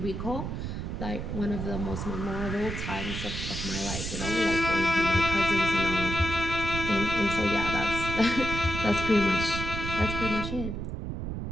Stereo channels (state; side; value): noise; right; rumble, 5 dB below the sound